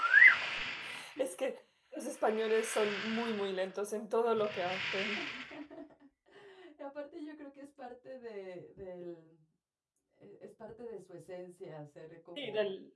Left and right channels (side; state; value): both; identical; correlation 1.00